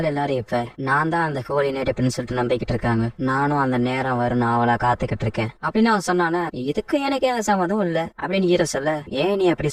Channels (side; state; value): both; identical; correlation 1.00